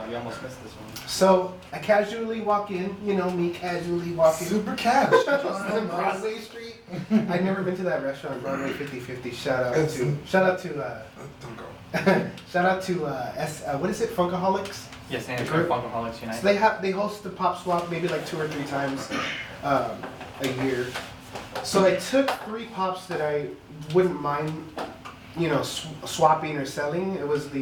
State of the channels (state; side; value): identical; both; correlation 1.00